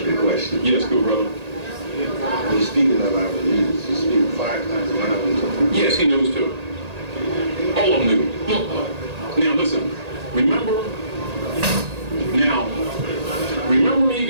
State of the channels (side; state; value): left; late; 1.8 ms